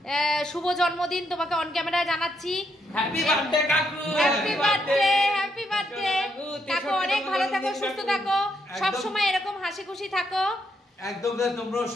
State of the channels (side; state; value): both; normal; correlation 0.77